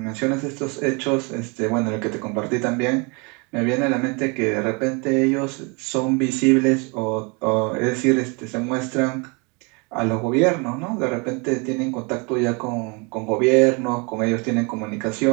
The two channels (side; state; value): left; quieter; 31.3 dB